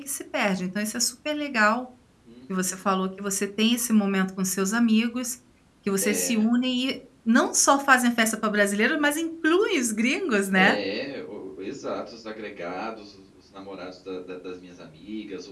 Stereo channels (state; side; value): identical; both; correlation 1.00